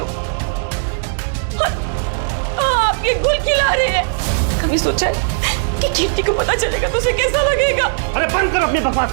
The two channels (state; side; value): silent; left; digital silence